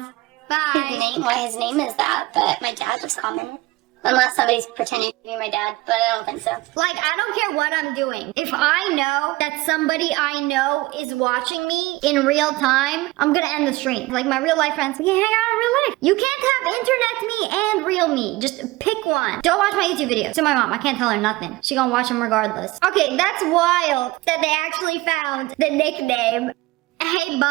Bye. his name is that, but my dad just called him. Unless somebody's pretending to be my dad, but I don't think so. Like, I don't care what I'm doing. If I know that somebody I know is watching me in real time, I'm gonna end the stream. Like, my real life friends, we hang out in real life. You can't have internet me and real me. Just pick one. Don't watch my YouTube videos. To my mom, I can't tell her nothing. She gonna watch them regardless. Okay, that's wild that they actually found the nickname. Hey,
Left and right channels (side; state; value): left; quieter; 20.1 dB